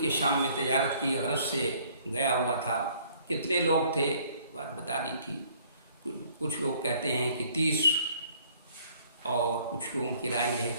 شام میں تجارت کی غرض سے گیا ہوا تھا۔ کتنے لوگ تھے بات بتا دی تھی، کچھ لوگ کہتے ہیں کہ 30، اور کچھ لوگوں کی رائے یہ ہے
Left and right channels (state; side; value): inverted; both; correlation -0.59